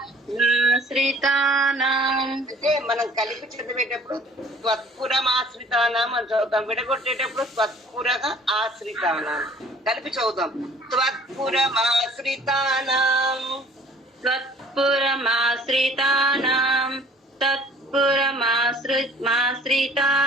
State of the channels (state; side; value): normal; both; correlation 0.53